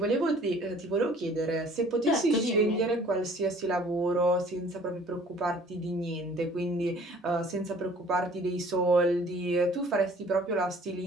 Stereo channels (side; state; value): both; normal; correlation 0.53